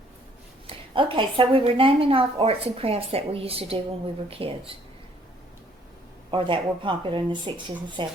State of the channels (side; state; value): both; normal; correlation 0.63